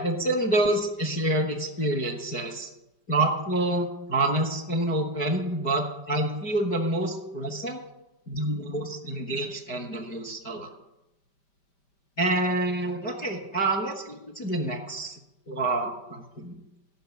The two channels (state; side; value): late; right; 5.1 ms